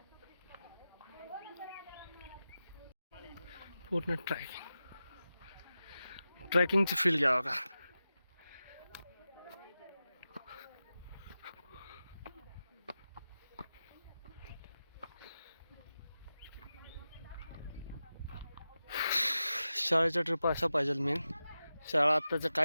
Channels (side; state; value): both; inverted; correlation -0.93